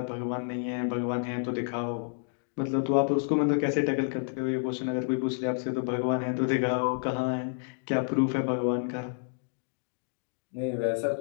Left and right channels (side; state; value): right; silent; digital silence